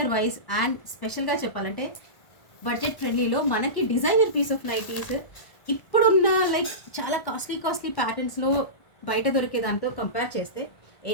wise and స్పెషల్గా చెప్పాలంటే బడ్జెట్ ఫ్రెండ్లీలో మనకి డిజైనర్ పీస్ ఆఫ్ నైటీస్ ఇప్పుడున్న లైక్ చాలా కాస్ట్లీ ప్యాటర్న్స్లో బయట దొరికే దాంతో కంపేర్ చేస్తే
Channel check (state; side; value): late; right; 1.5 ms